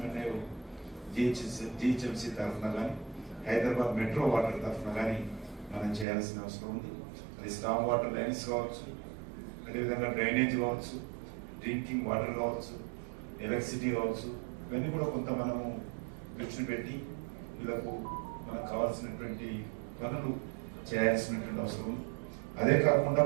జిహెచ్ఎంసీ తరఫున కానీ, హైదరాబాద్ మెట్రో వాటర్ తరఫున కానీ మనం చేయాల్సిన అవసరం ఉంది. అది స్టామ్ వాటర్ లైన్స్ కావచ్చు, అదేవిధంగా డ్రైనేజ్ కావచ్చు, డ్రింకింగ్ వాటర్ కావచ్చు, ఎలక్ట్రిసిటీ కావచ్చు, ఇవన్నీ కూడా కొంత మనము దృష్టి పెట్టి వీళ్ళకు మనకు కావాల్సినటువంటి పనులు చేయాల్సినటువంటి అవసరం ఉంది. అదే కాకుండా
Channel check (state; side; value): drops out; left; at 6.1 s